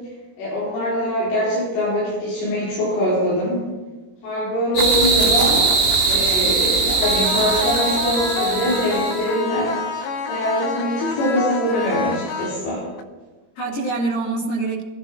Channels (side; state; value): right; late; 21 ms